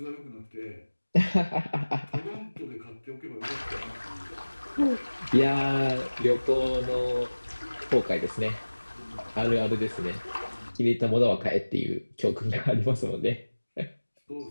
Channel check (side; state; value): both; inverted; correlation -1.00